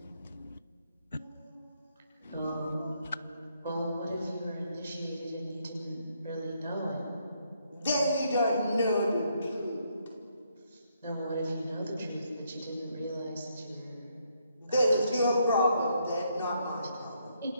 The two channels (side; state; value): both; inverted; correlation -0.74